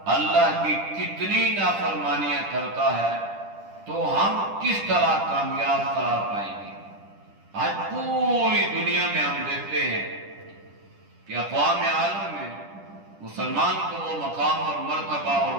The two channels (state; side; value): late; left; 10 ms